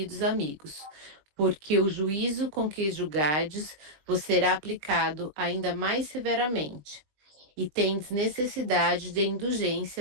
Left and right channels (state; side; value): late; left; 20 ms